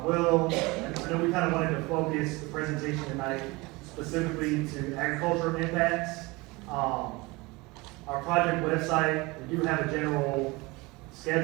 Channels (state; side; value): quieter; left; 23.8 dB